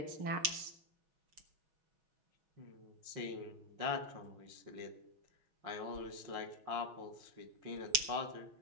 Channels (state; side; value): late; left; 6.1 ms